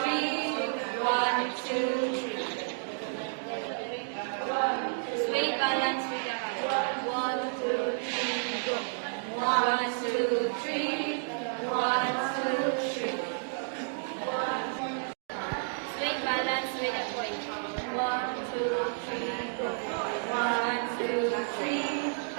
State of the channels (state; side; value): silent; left; digital silence